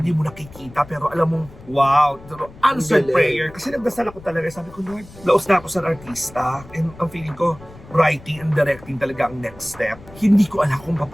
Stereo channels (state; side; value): noise; left; rumble, 20 dB below the sound